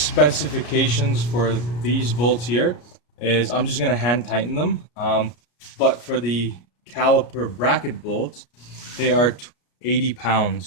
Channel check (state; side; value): late; right; 33 ms